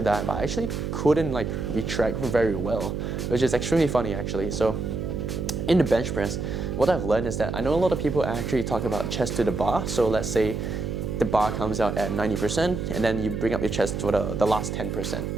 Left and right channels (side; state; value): right; noise; hum, 3 dB below the sound